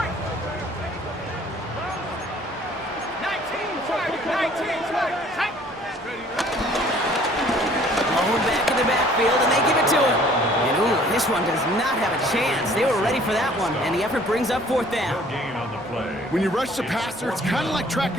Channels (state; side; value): normal; both; correlation 0.55